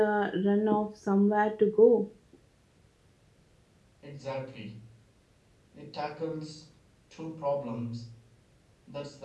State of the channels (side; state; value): both; identical; correlation 1.00